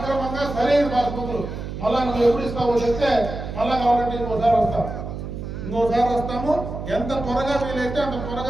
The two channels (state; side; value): noise; right; hum, 7 dB below the sound